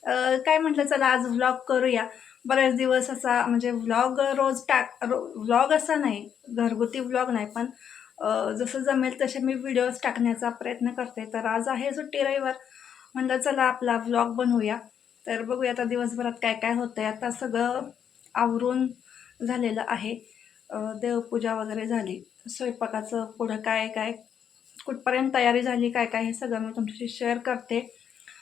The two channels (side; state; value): right; quieter; 8.3 dB